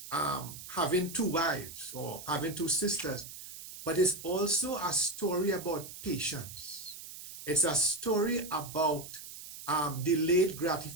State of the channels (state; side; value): noise; right; hiss, 13 dB below the sound